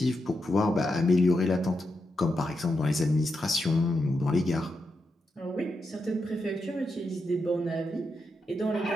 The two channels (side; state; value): both; normal; correlation 0.86